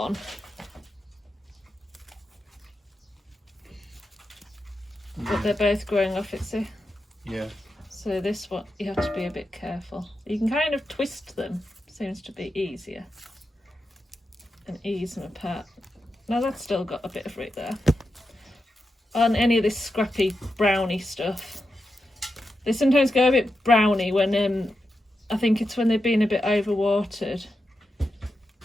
But they're both growing off it, see? Yeah. So this one, you have to be a bit careful. You can kind of twist them, seems to be easier. And ease them apart. Now that's still got a bit of root there. On any of this scrappy browny stuff. They sometimes go a bit browny when, I think it's when they've been a bit overwatered.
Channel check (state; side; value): normal; both; correlation 0.88